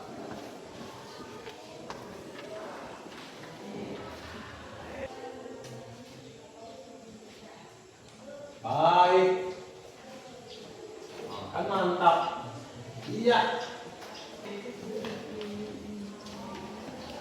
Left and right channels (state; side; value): identical; both; correlation 1.00